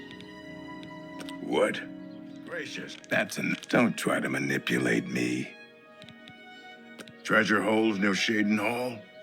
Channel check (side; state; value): both; identical; correlation 1.00